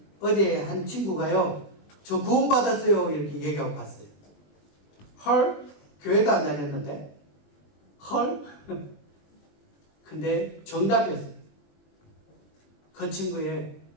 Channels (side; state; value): right; late; 20 ms